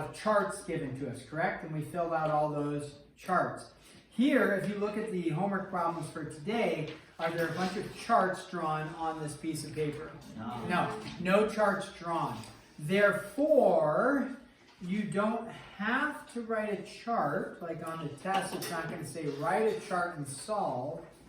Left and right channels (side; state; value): both; identical; correlation 1.00